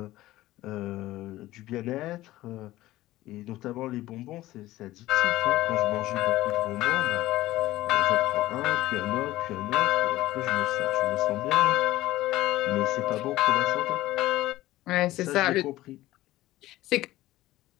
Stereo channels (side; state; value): right; quieter; 16.4 dB